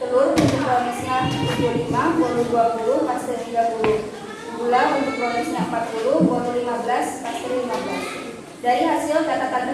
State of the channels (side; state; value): both; identical; correlation 1.00